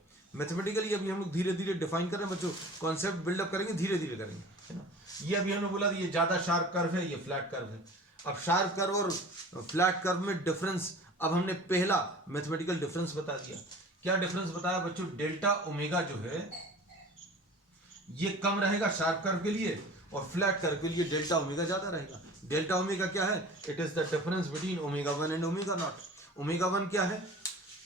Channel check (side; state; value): both; normal; correlation 0.42